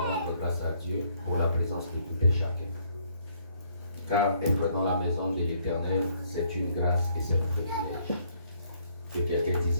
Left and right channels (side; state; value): both; inverted; correlation -0.66